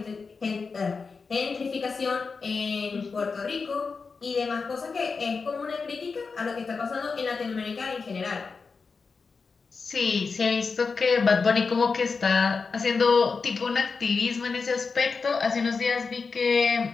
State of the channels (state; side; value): quieter; right; 4.8 dB